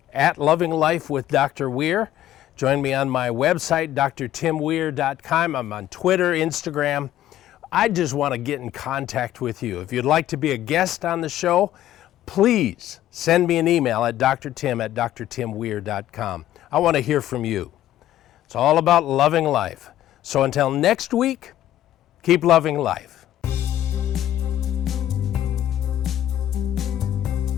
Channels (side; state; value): right; quieter; 12.8 dB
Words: at Loving Life with Dr. Weir. Join me on my website, drtimweir.com. I'm on Twitter, Instagram. I just want to get in contact with you. If you'd like to be a guest on the show, please send me an email at drtim@drtimweir.com. I want to hear from you. It's all about loving life. So until next week, keep loving life.